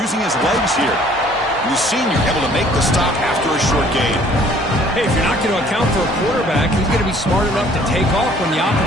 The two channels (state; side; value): normal; both; correlation 0.56